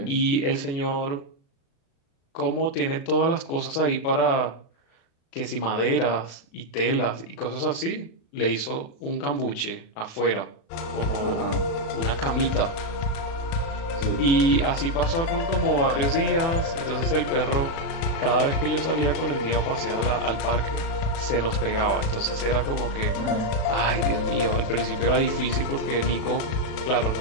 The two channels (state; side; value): late; right; 36 ms